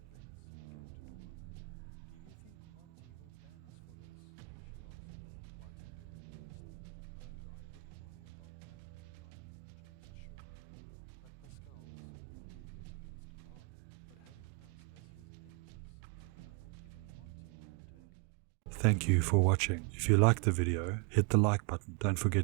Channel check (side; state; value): left; quieter; 32.3 dB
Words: began to dawn on her. "Do you think Monty will ban us for this?" she asked, biting her lip nervously. "Oh, I wouldn't worry about that, Mary darling," James assured her. "At Pascal's, you bet against God, but having us as his enemies is a gamble even Monty wouldn't take." Thank you for watching. If you liked the video, hit the like button. Don't